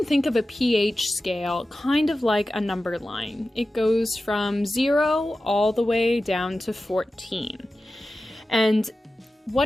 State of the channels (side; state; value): both; normal; correlation 0.94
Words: think of a pH scale kind of like a number line. It goes from 0 all the way down to 14. And